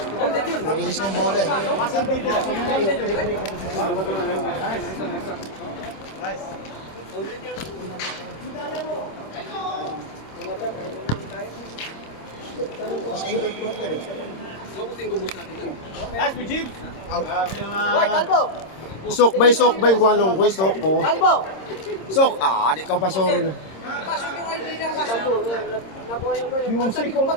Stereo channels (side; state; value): right; late; 26 ms